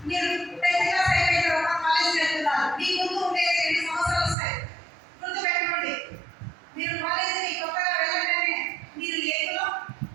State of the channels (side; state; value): left; drops out; at 4.4 s